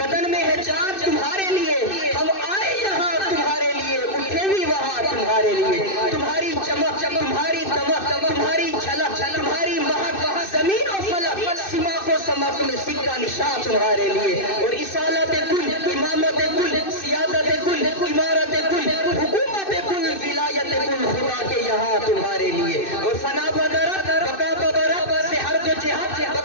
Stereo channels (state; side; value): late; right; 2.6 ms